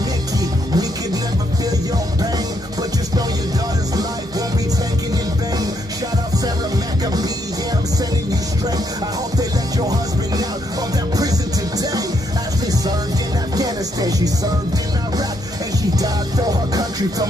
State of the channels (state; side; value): normal; both; correlation 0.75